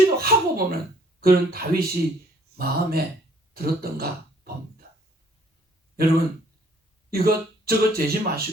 보는 그런 다윗이 마음에 들었던가 봅니다. 여러분 이것저것 재지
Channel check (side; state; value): both; normal; correlation 0.61